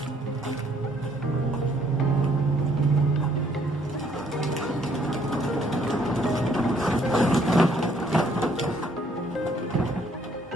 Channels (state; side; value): normal; both; correlation 0.65